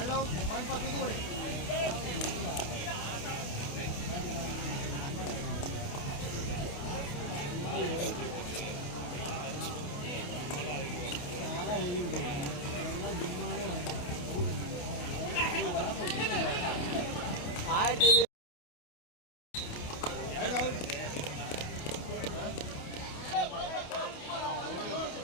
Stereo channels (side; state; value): right; late; 28 ms